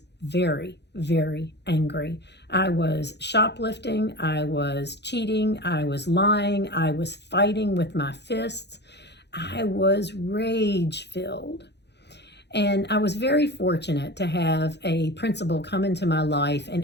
very, very angry. I was shoplifting. I was cheating. I was lying. I was fighting with my fists. I was rage-filled. And I was very fortunate to have a principal come into my life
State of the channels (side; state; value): right; late; 0.50 ms